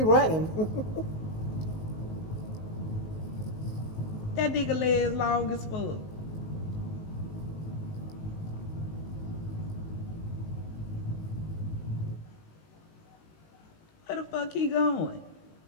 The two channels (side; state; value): right; late; 19 ms